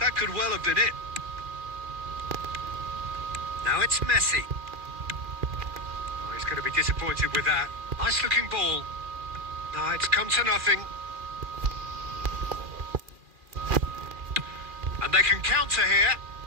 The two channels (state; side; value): late; left; 2.4 ms